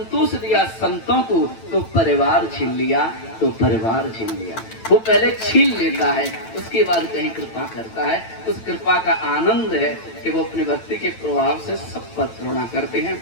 दिया संतों को तो परिवार छीन लिया, तो परिवार छीन लिया। वो पहले छीन लेता है, उसके बाद कहीं कृपा करता है। उस कृपा का आनंद है कि वो अपने भक्ति के प्रभाव से सब पर करुणा करते हैं।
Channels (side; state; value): right; late; 9.0 ms